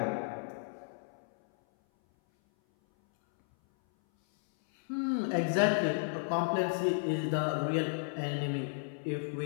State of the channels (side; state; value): right; silent; 56 dB below the other